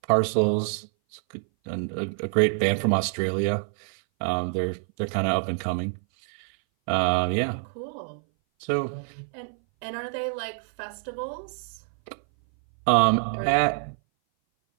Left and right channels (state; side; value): silent; left; 58 dB below the other